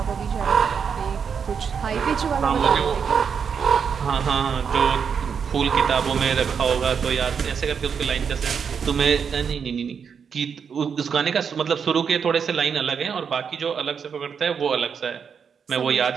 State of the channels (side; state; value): left; quieter; 6.7 dB